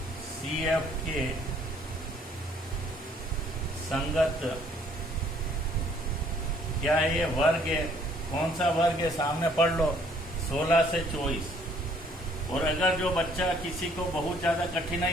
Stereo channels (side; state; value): both; normal; correlation 0.62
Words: CF के संगत क्या है, ये वर्ग है। कौन सा वर्ग है सामने पढ़ लो 16 से 24। और अगर जो बच्चा किसी को बहुत ज्यादा